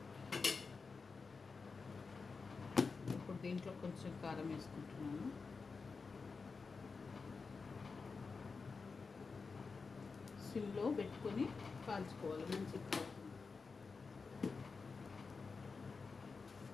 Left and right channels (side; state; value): right; quieter; 4.6 dB